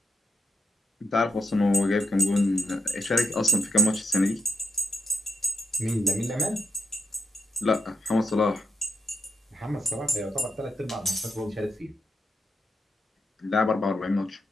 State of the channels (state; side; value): normal; both; correlation 0.81